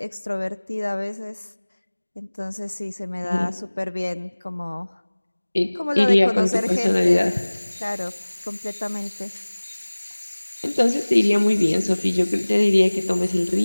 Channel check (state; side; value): inverted; both; correlation -1.00